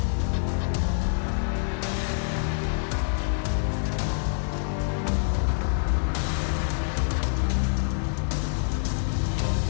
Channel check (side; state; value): right; silent; digital silence